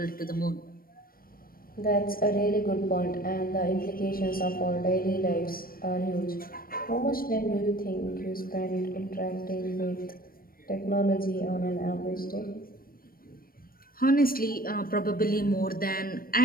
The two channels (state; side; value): late; right; 0.42 ms